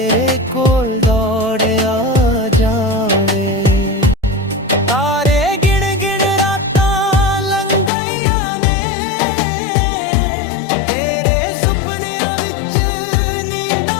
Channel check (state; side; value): drops out; right; at 7.9 s